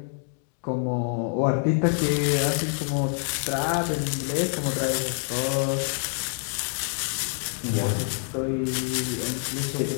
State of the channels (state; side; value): silent; right; 61 dB below the other